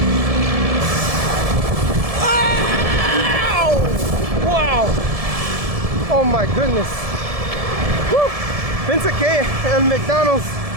Ow! Wow! Oh my goodness. Woo! Pensé que el McDonald's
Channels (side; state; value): left; late; 1.7 ms